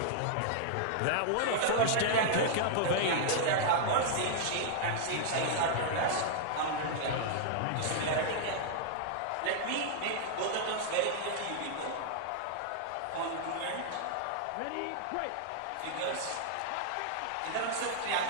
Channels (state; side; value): different; both; correlation -0.01